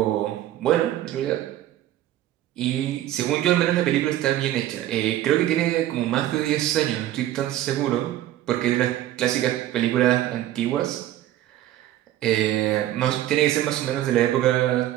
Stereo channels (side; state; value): left; quieter; 13.3 dB